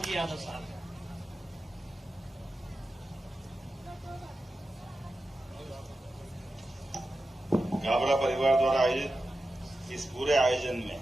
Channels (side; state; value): both; normal; correlation 0.92